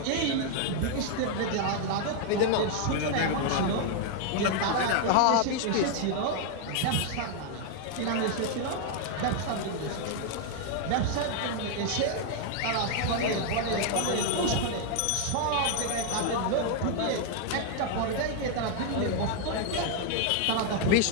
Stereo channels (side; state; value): both; different; correlation 0.00